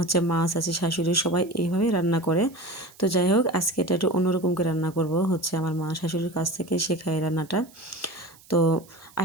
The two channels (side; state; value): right; noise; hiss, 25 dB below the sound